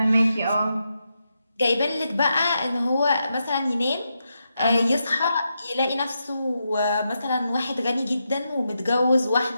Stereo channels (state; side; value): inverted; both; correlation -0.85